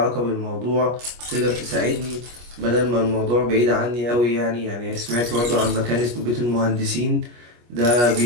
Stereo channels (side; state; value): left; late; 25 ms